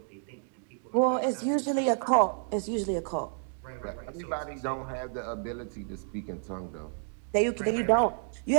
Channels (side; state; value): left; silent; 58 dB below the other